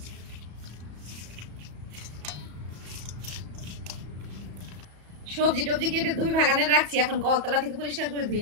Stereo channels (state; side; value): late; left; 34 ms